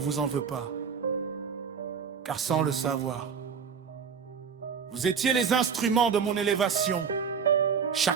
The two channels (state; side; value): quieter; left; 6.5 dB